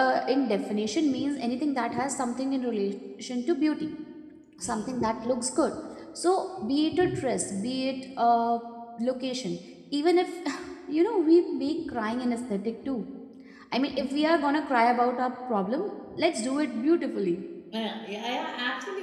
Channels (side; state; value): both; identical; correlation 1.00